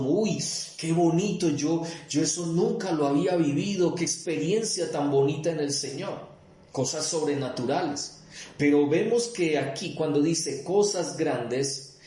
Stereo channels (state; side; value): identical; both; correlation 1.00